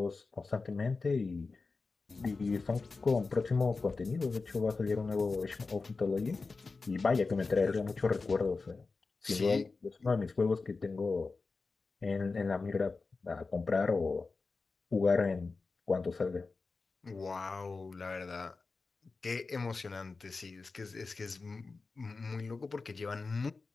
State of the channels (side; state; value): right; quieter; 4.1 dB